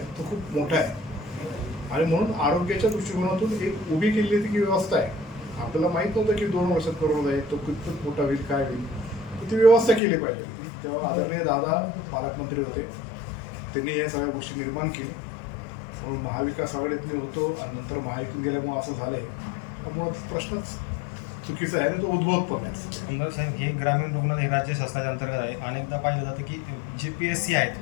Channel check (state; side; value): drops out; right; at 10.0 s